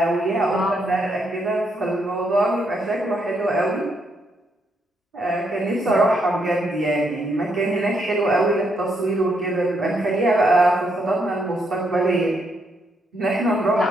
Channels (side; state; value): both; normal; correlation 0.76